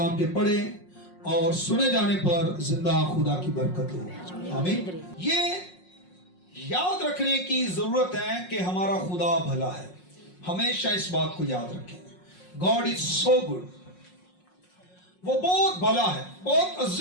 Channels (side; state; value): right; late; 5.5 ms